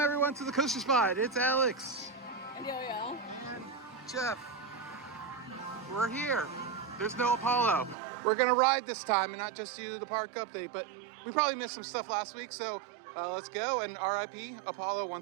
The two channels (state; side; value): drops out; left; at 8.0 s